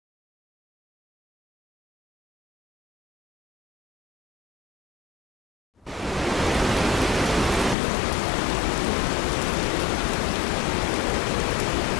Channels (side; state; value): right; drops out; at 7.8 s